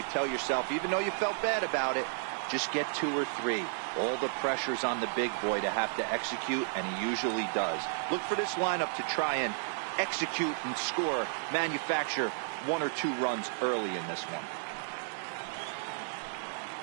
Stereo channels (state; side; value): silent; left; digital silence